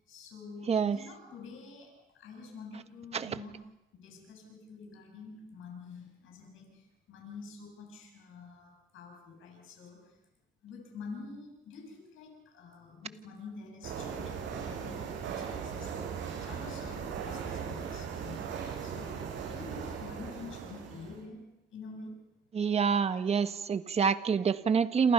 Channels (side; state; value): left; quieter; 5.4 dB